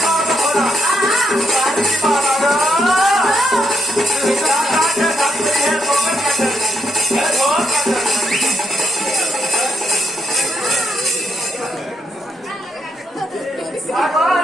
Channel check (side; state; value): both; normal; correlation 0.78